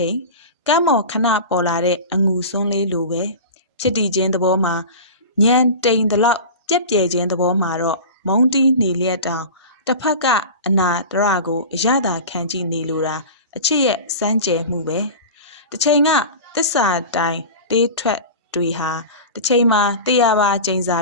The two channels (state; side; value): inverted; both; correlation -0.31